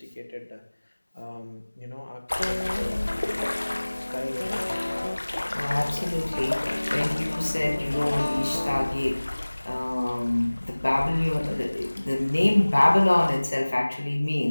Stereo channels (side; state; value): both; inverted; correlation -1.00